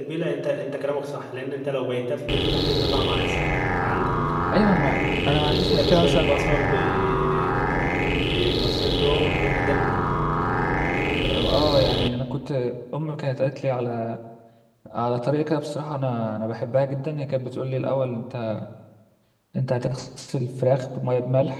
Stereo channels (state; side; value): identical; both; correlation 1.00